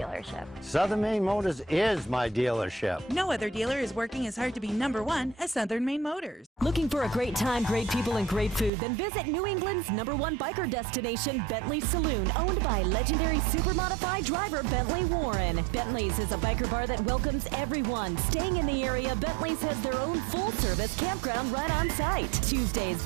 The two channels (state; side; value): drops out; left; at 8.7 s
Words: Southern Maine Motors is my dealership. No other dealer is working as hard to be #1 as Southern Maine Motors. Looking for a great time, great people, and great food? Then visit New England's #1 biker destination, Bentley Saloon, owned by legendary super modified driver Bentley Warren. Bentley's is a biker bar that welcomes everyone. Staying in the area, Bentley's has their own full-service campground right on site. Tuesdays,